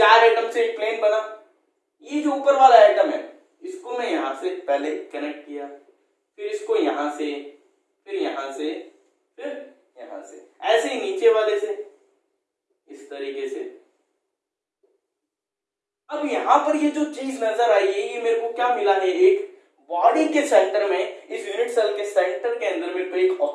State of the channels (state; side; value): identical; both; correlation 1.00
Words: एटम से एक प्लेन बना। ये जो ऊपर वाला एटम है इसको मैं यहाँ से पहले कनेक्ट किया, फिर इसको यहाँ से, फिर यहाँ से, फिर यहाँ से, ऐसे ही नीचे वाले से इस तरीके से। अब यहाँ पर ये जो चीज नजर आई है, ये मेरे को क्या मिला है, एक बॉडी के सेंटर में, इस यूनिट सेल के सेंटर के अंदर मेरे को एक